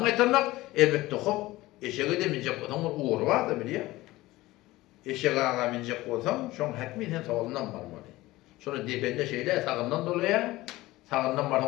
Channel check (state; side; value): quieter; right; 18.3 dB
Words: qaytarmak elbette hop eşeğe de minjek adam uğur var da biliyor. Eşeğe ağa minjek olsam, şoň häkmi sen sağından barmaly. Şonu depende şeyler sağından dolaya, sağından